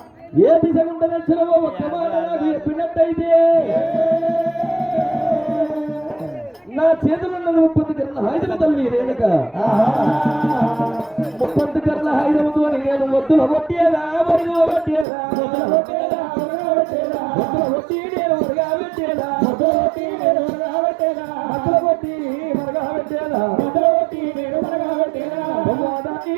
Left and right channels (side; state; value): left; drops out; at 15.1 s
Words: ఏ దిశ గుండా దక్షిణమో ఒక్క మాట నాకు చెప్పినట్టయితే నా చేతులున్నది 30 కర్ల హాయిదల తల్లి రేణుక 30 కర్ల హాయిదముతో నేను వద్దుల కొట్టేదా మరుగు కొట్టేదా వద్దుల కొట్టి నేను మరుగా పెట్టేదా అసలు కొట్టి మరుగా పెట్టేదా బొమ్మదాన్ని